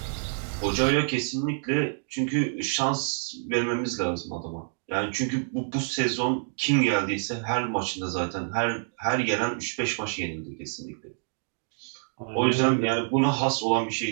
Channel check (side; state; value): left; silent; digital silence